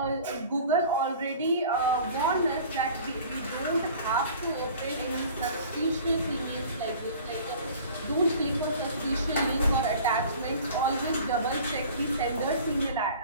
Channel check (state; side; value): inverted; both; correlation -0.45